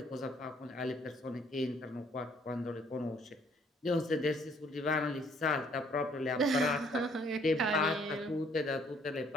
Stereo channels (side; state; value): both; normal; correlation 0.63